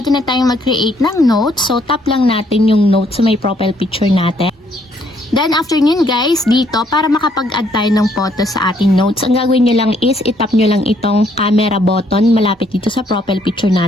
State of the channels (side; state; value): both; normal; correlation 0.68